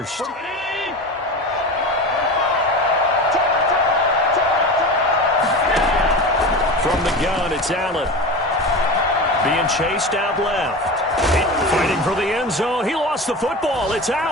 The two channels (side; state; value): both; normal; correlation 0.28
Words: From the gun, it's Allen. Being chased out left. Fighting for the end zone. He lost the football. It's